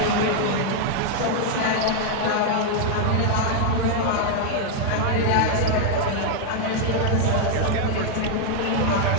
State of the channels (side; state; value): both; different; correlation 0.00